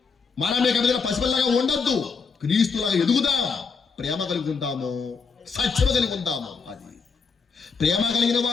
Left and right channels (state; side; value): quieter; right; 5.2 dB